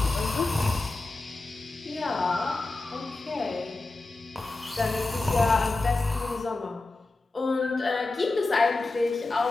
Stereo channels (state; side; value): quieter; right; 3.2 dB